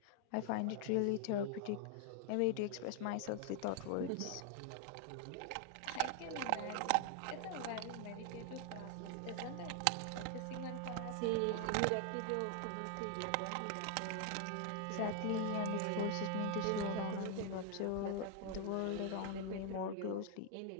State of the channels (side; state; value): both; different; correlation 0.00